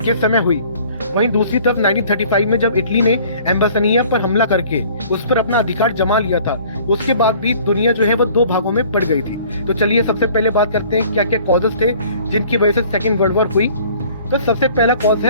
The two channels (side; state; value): both; inverted; correlation -0.52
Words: के समय हुई। वहीं दूसरी तरफ 1935 में जब इटली ने एम्बासनिया पर हमला करके उस पर अपना अधिकार जमा लिया था, उसके बाद भी दुनिया जो है वो 2 भागों में पड़ गई थी। तो चलिए सबसे पहले बात करते हैं क्या क्या कॉजेस थे जिनकी वजह से सेकेंड वर्ल्ड वॉर हुई। तो सबसे पहला कॉज